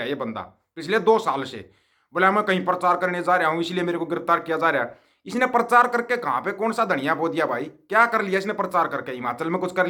है ये बंदा। पिछले 2 साल से बोला मैं कहीं प्रचार करने जा रहा हूँ इसलिए मेरे को गिरफ्तार किया जा रहा है। इसने प्रचार करके कहाँ पे कौन सा धनिया बो दिया भाई? क्या कर लिया इसने प्रचार करके? हिमाचल में कुछ कर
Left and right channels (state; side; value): identical; both; correlation 1.00